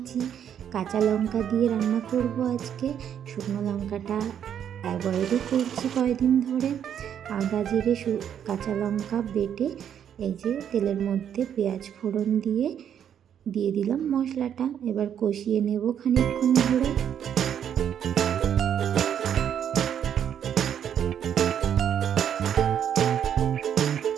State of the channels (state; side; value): quieter; left; 9.1 dB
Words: কাঁচা লঙ্কা দিয়ে রান্না করব আজকে, শুকনো লঙ্কাটা অ্যাভয়েডই করছি কয়েকদিন ধরে। আদা জিরে কাঁচা লঙ্কা বেটে এই যে তেলের মধ্যে পেঁয়াজ ফোড়ন দিয়ে দিলাম মশলাটা, এবার কষিয়ে নেব খানিকক্ষণ ধরে।